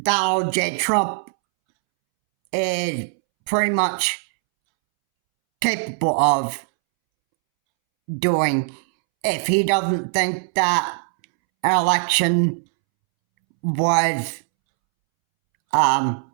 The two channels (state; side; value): silent; left; 65 dB below the other